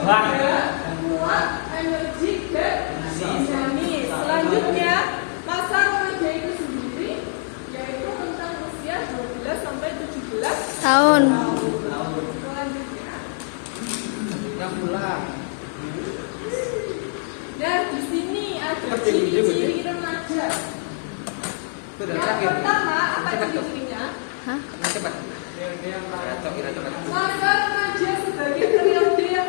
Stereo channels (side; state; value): right; silent; digital silence